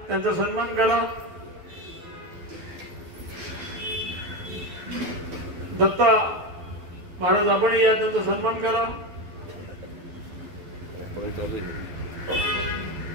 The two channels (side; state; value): left; late; 12 ms